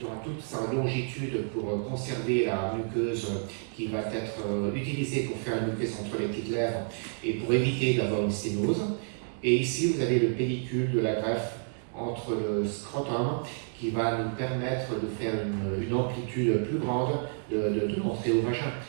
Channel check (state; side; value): silent; left; 58 dB below the other